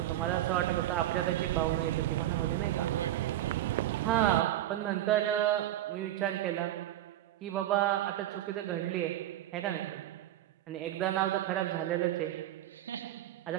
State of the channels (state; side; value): quieter; left; 13.5 dB